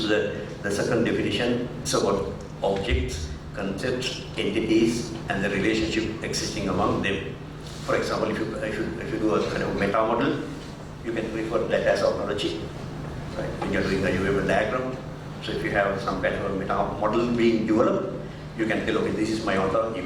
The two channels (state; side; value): identical; both; correlation 1.00